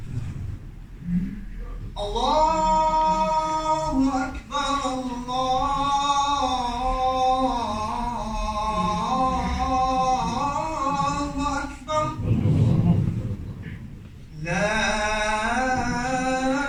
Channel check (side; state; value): both; identical; correlation 1.00